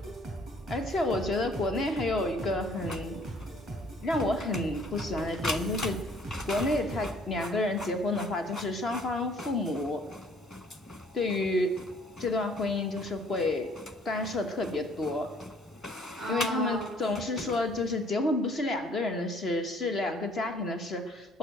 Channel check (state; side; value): normal; both; correlation 0.58